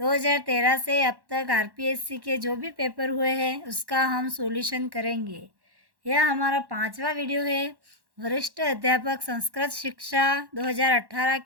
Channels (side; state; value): left; late; 1.1 ms